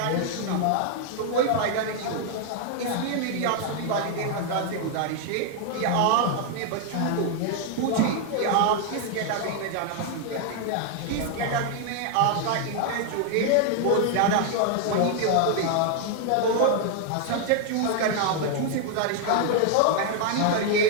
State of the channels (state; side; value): different; both; correlation 0.00